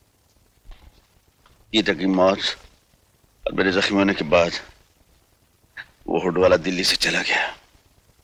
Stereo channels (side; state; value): both; identical; correlation 1.00